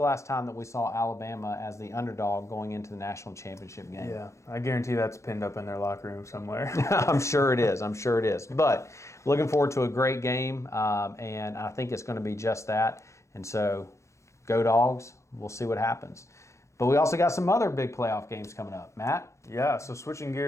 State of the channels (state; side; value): late; right; 0.14 ms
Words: last time that we saw Alabama as the underdog going into the national championship game? Yeah, I guarantee that's pinned up in their locker room somewhere. I'm sure it is. But looking forward to a great game, and I think it's going to be just that. And so, go Dogs. We'll see what happens. But we also got some other big playoff games coming up. Matt? Yeah, so switching